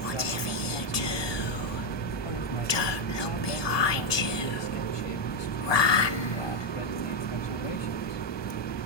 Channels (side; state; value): right; late; 1.7 ms